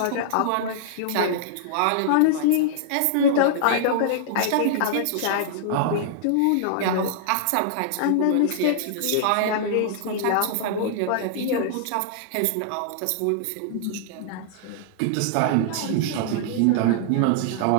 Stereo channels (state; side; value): different; both; correlation -0.01